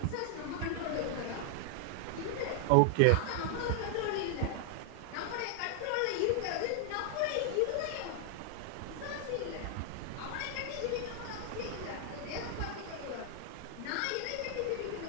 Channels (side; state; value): both; different; correlation 0.00